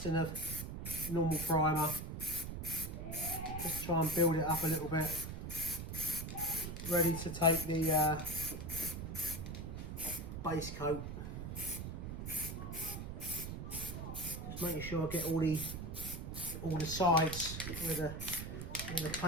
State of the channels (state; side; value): noise; right; rumble, 6 dB below the sound